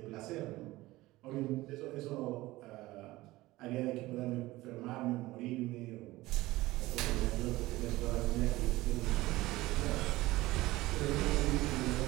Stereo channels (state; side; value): quieter; left; 18.5 dB